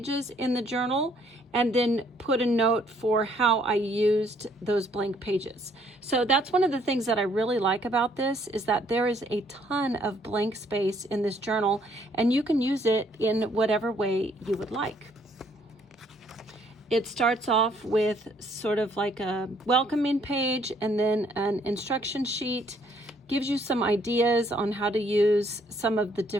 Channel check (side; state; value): both; normal; correlation 0.65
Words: in the journal and then put a note for how I used those blank pages. So that's one of the things that I really like about this, is that there is a ton of blank space in this journal and you can use it in whatever way you would like. It starts off with sort of like a welcoming page and then an instruction sheet. Gives you some ideas on how to use some of the